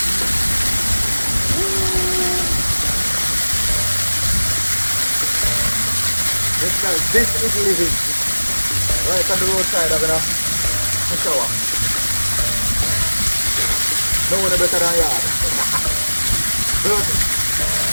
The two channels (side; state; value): both; inverted; correlation -1.00